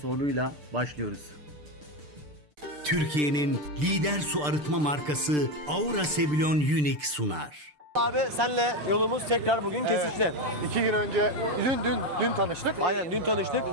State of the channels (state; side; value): late; left; 6.7 ms